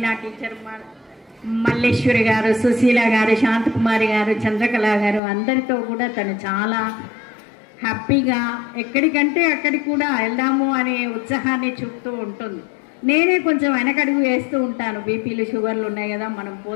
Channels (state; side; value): drops out; right; at 5.2 s